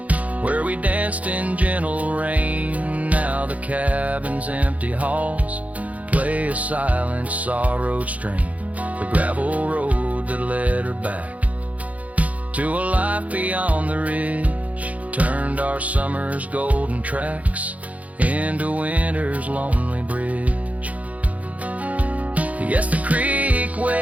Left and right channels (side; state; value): left; late; 0.069 ms